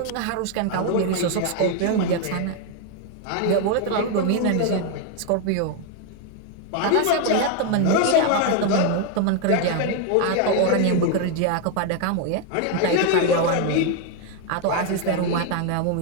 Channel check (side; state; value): both; different; correlation 0.01